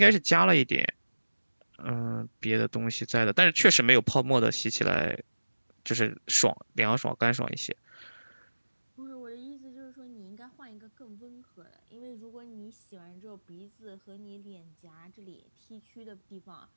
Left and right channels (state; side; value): inverted; both; correlation -1.00